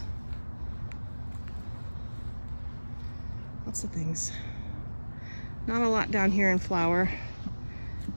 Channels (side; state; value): both; inverted; correlation -1.00